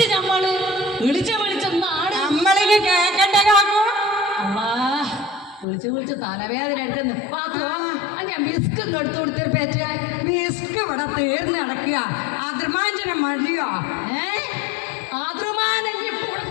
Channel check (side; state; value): right; drops out; at 5.7 s